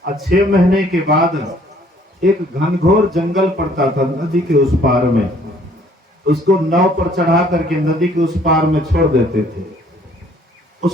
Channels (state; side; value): normal; both; correlation 0.60